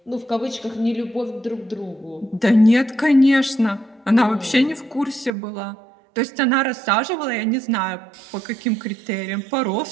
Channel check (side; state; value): left; drops out; at 5.3 s